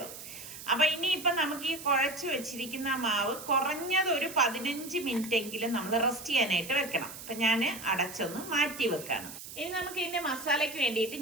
അപ്പൊ ഇനിയിപ്പൊ നമുക്ക് ഈ കുഴച്ചു വെച്ചിരിക്കുന്ന മാവ് കുറഞ്ഞത് ഒരു 15 മിനിറ്റ് എങ്കിലും നമ്മൾ റെസ്റ്റ് ചെയ്യാനായിട്ട് വെക്കണം. അപ്പൊ ഞാൻ അടച്ചൊന്ന് മാറ്റി വെക്കാണ്. ഇനി നമുക്ക് ഇതിന്റെ മസാലയ്ക്ക് വേണ്ടിയിട്ട്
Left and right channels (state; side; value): noise; right; hiss, 12 dB below the sound